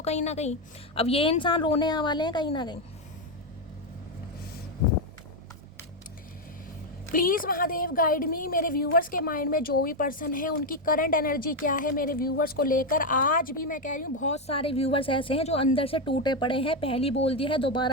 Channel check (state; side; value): normal; both; correlation 0.05